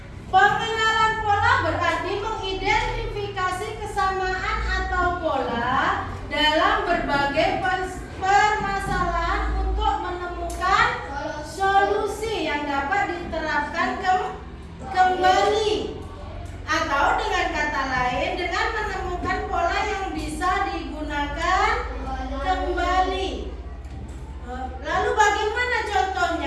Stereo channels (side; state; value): both; identical; correlation 1.00